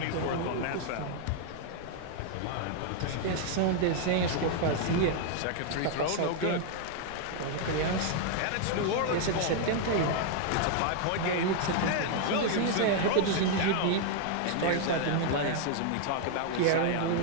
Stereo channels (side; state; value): both; different; correlation 0.00